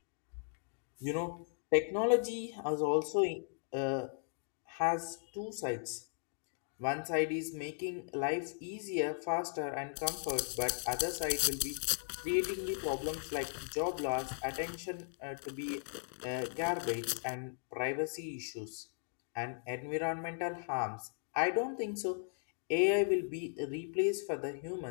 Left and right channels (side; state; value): right; silent; digital silence